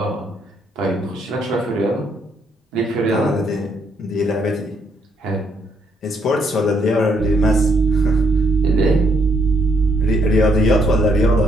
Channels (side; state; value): both; normal; correlation 0.71